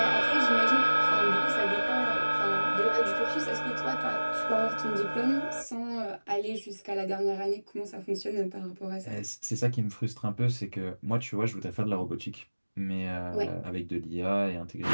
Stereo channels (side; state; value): both; inverted; correlation -1.00